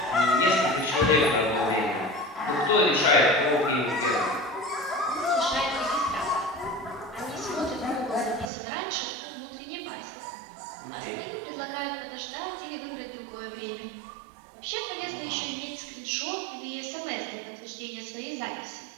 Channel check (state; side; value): drops out; left; at 8.5 s